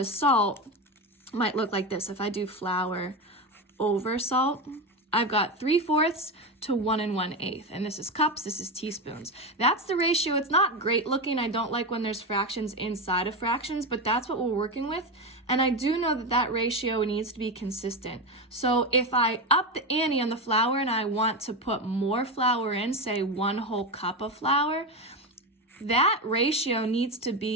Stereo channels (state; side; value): normal; both; correlation 0.16